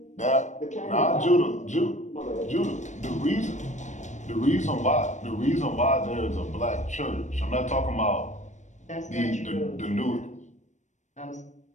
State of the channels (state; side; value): late; right; 0.35 ms